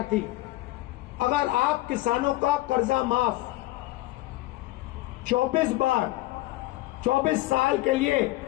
थी। अगर आप किसानों का कर्जा माफ 24 बार 24 साल के लिए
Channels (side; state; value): right; quieter; 18.6 dB